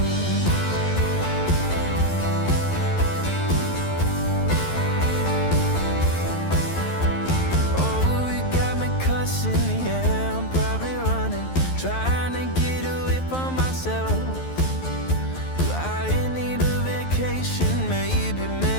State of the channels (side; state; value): right; late; 12 ms